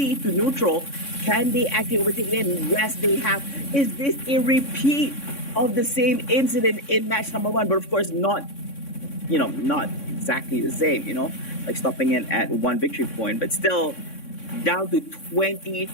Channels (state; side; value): late; right; 3.6 ms